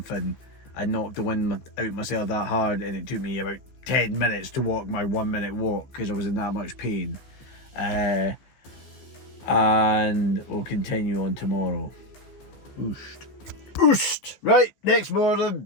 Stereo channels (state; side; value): late; right; 15 ms